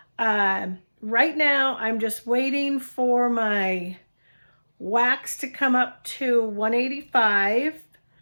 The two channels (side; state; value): both; inverted; correlation -1.00